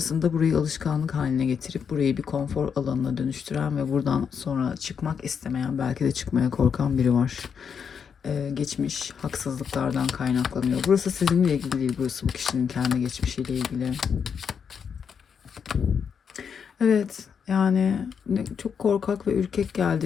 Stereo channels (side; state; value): right; quieter; 6.9 dB